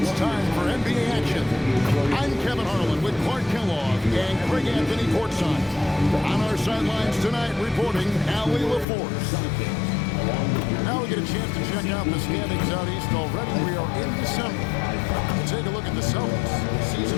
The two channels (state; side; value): drops out; right; at 8.8 s